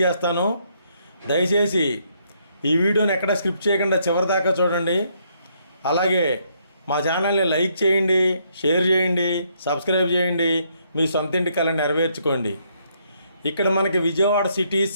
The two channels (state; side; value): inverted; both; correlation -0.72